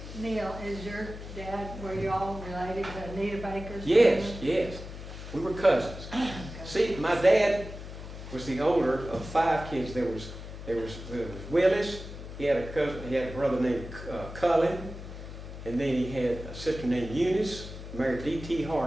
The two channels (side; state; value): left; noise; hum, 11 dB below the sound